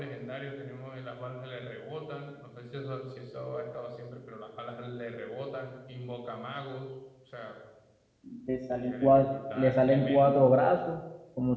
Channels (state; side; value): identical; both; correlation 1.00